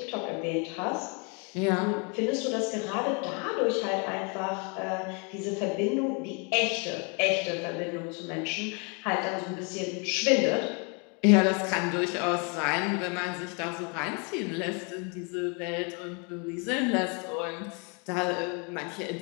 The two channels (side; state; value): right; quieter; 34.5 dB